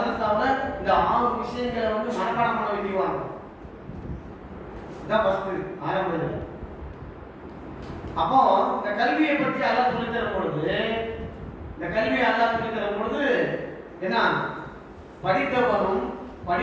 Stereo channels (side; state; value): both; identical; correlation 1.00